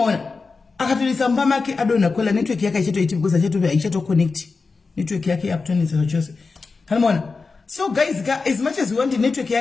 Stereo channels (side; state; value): right; quieter; 4.3 dB